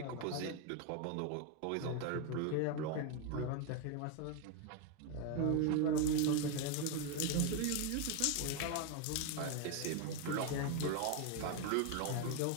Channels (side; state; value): both; different; correlation 0.01